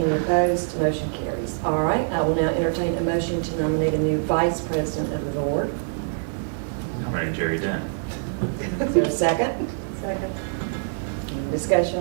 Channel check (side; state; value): left; silent; digital silence